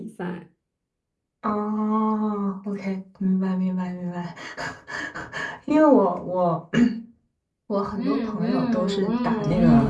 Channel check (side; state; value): both; identical; correlation 1.00